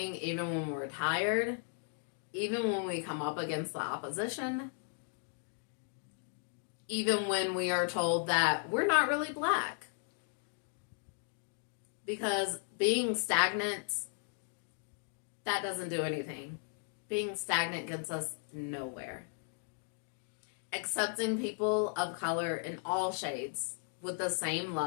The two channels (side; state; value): right; silent; 54 dB below the other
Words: even when we're tired, even when we come up against the opposition, even when we are told that we're not really black. Because being stagnant, that doesn't do anything. Being stagnant gets us nowhere. Accepting people of color in all shades with the same